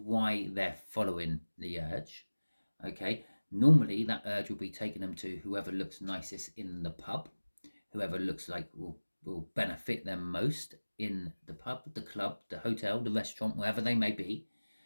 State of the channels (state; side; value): inverted; both; correlation -1.00